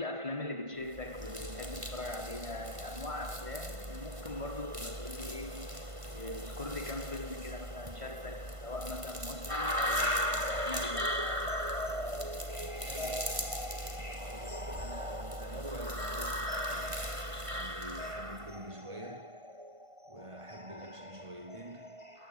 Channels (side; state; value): left; late; 1.5 ms